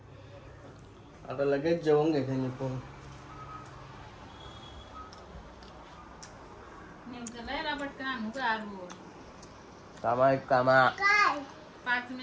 आता लगेच जेवून घेते मी पण. कामा एक कामा 5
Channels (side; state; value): both; identical; correlation 1.00